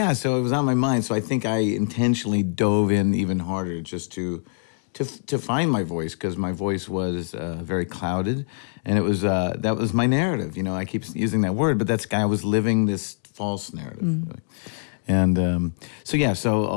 was on my mind. So I think I intentionally dove in even harder just to find my voice, because my voice was very clouded, and it was that was my narrative. I keep using that word, but I was living this false narrative. Really. And so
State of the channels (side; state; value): right; silent; 63 dB below the other